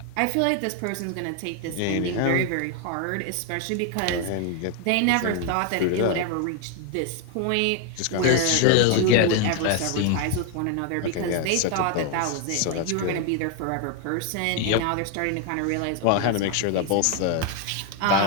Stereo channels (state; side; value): different; both; correlation 0.00